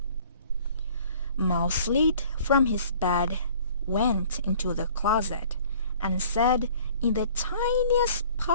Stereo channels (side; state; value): both; inverted; correlation -0.52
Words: Mouse slid from his bed, went into the closet, and said in the tiniest